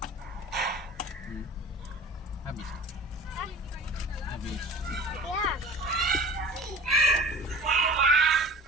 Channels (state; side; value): normal; both; correlation 0.40